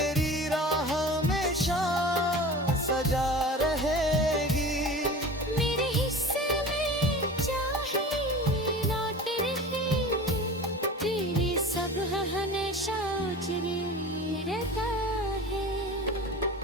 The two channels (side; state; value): both; normal; correlation 0.36